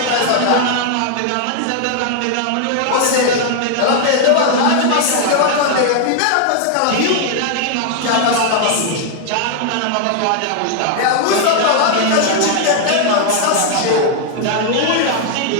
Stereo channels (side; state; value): both; different; correlation 0.00